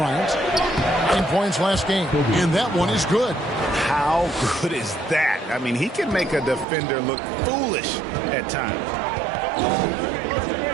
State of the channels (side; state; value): left; drops out; at 6.7 s